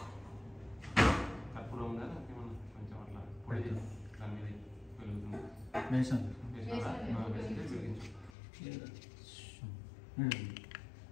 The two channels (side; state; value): right; drops out; at 8.3 s